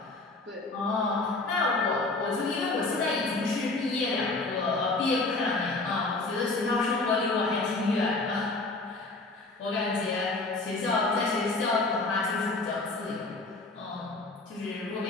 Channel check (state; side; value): quieter; right; 3.3 dB